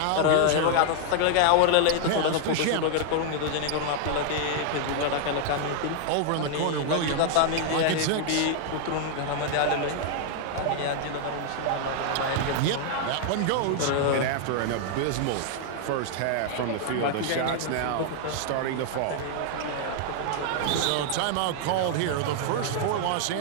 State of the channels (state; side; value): different; both; correlation 0.00